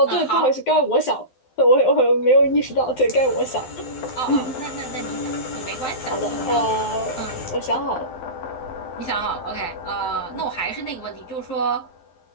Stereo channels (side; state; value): right; late; 12 ms